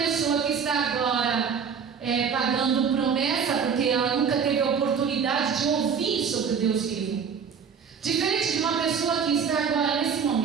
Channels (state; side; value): quieter; left; 6.6 dB